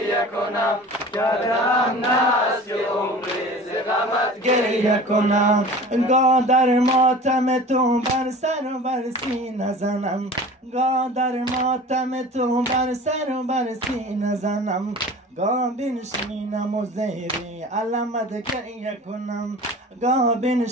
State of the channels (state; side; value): normal; both; correlation 0.40